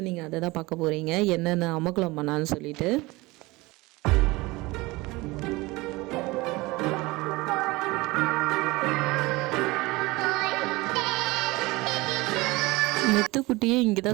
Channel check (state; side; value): quieter; left; 22.0 dB